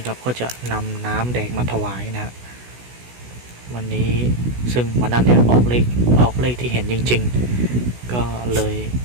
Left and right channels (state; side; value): late; left; 16 ms